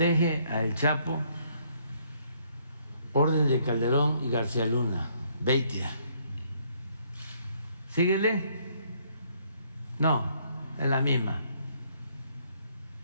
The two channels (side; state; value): both; inverted; correlation -0.67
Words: a El Chapo. Orden de Calderón y García Luna. Beitia. Síguele. No, es la misma.